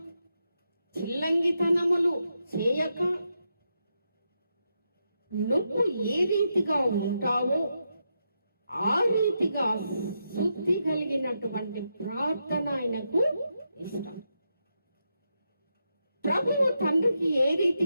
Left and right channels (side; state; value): both; inverted; correlation -0.84